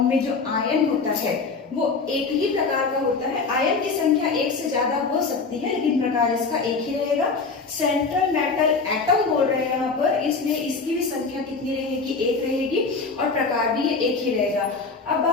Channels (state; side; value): quieter; right; 4.4 dB